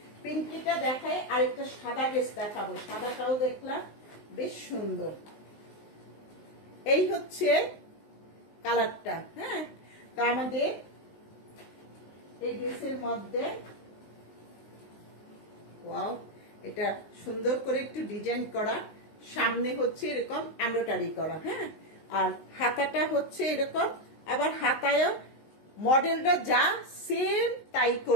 পিঙ্কিটা দেখাই, আর একটা সাদা ড্রেস দেখাবো। সাদাটাও দেখলাম বেশ সুন্দর। এই হচ্ছে কালারটা। হ্যাঁ, তো আমাদের এই ড্রেসের মধ্যে ওয়াও, এটা সুন্দর করে একটু ডিজাইন করা, সামনে হচ্ছে এরকম এমব্রয়ডারি করা। হ্যাঁ, আর হাতাটা হচ্ছে এরকম, আবার হাতায়ও মডেলটা যা সেম তাই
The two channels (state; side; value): late; right; 19 ms